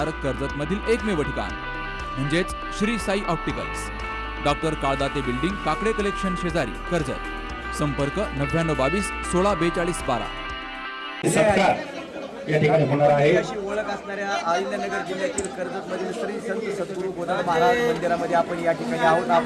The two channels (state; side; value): identical; both; correlation 1.00